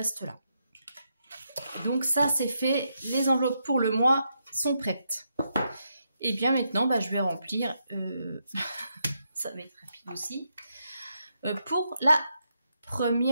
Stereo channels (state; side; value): inverted; both; correlation -0.81